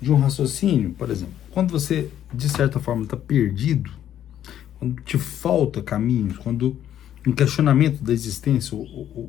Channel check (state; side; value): quieter; right; 10.8 dB